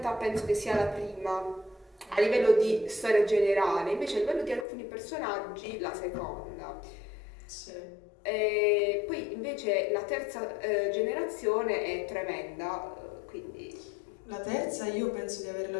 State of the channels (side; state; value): right; drops out; at 4.7 s